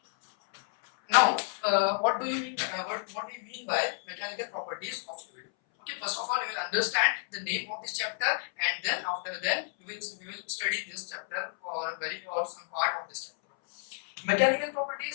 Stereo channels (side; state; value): right; silent; 57 dB below the other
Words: Now, what do you mean? What do you mean by mechanical properties of fluid? Okay, first of all, you will understand the name of this chapter, and then after that, we will study this chapter or some part of this chapter. Mechanical